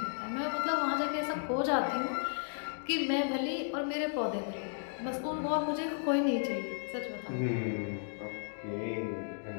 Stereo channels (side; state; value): right; silent; digital silence